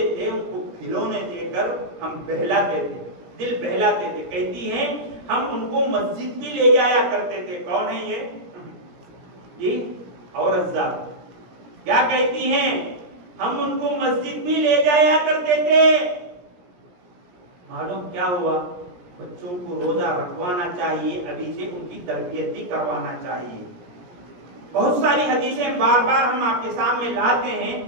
تھے ان کو کھلونے دے کر ہم بہلاتے تھے، دل بہلاتے تھے۔ کہتی ہیں ہم ان کو مسجد بھی لے جایا کرتے تھے۔ کون ہے یہ؟ جی عورت ذات کیا کہتی ہیں؟ ہم ان کو مسجد بھی لے جایا کرتے تھے۔ معلوم کیا ہوا؟ بچوں کو روزہ رکھوانا چاہیے، ابھی سے ان کی تربیت بھی کروانا چاہیے۔ بہت ساری حدیثیں بار بار ہم آپ کے سامنے لاتے ہیں،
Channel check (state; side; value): late; left; 17 ms